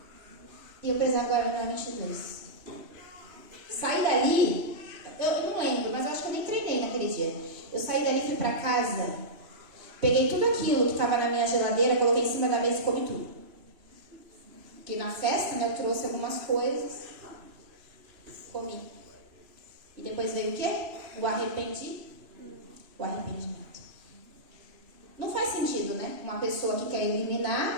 e eu precisava agora eliminar 22. Saí dali, eu não lembro, mas eu acho que eu nem treinei naquele dia. Eu saí dali, fui para casa, peguei tudo aquilo que estava na minha geladeira, coloquei em cima da mesa e comi tudo. Porque na festa, né, eu trouxe algumas coisas, comi. E depois veio o quê? O arrependimento. Não faz sentido, né? Uma pessoa que quer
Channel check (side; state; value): left; late; 3.0 ms